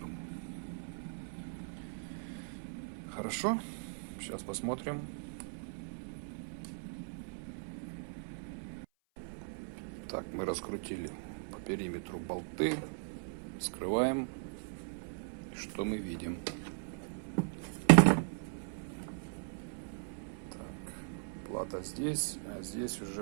Хорошо. Сейчас посмотрим. Так, мы раскрутили по периметру болты. Скрываем. Что мы видим? Так, плата здесь, а здесь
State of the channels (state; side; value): silent; left; 52 dB below the other